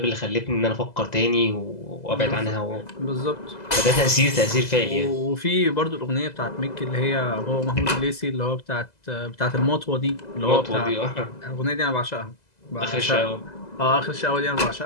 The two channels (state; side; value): late; right; 2.0 ms